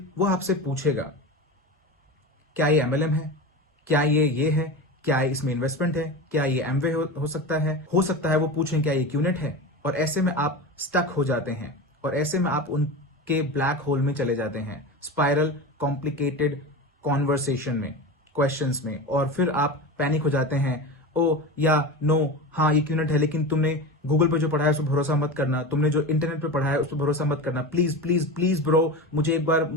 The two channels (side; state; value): both; normal; correlation 0.26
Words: पूछेगा क्या ये MLM है, क्या ये है, क्या इसमें इन्वेस्टमेंट है, क्या ये एमवे हो सकता है वो पूछें क्या ये QNET है। और ऐसे में आप स्टक हो जाते हैं और ऐसे में आप उनके ब्लैक होल में चले जाते हैं, स्पाइरल कॉम्प्लिकेटेड कॉन्वर्सेशन में, क्वेश्चंस में, और फिर आप पैनिक हो जाते हैं। ओ या नो, हाँ ये QNET है लेकिन तुमने गूगल पे जो पढ़ा है उस पर भरोसा मत करना, तुमने जो इंटरनेट पे पढ़ा है उस पर भरोसा मत करना, प्लीज प्लीज प्लीज ब्रो